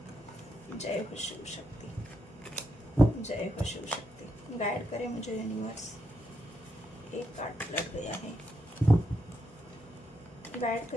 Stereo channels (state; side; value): normal; both; correlation 0.82